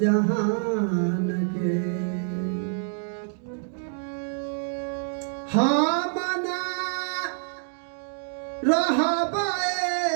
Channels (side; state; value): left; silent; digital silence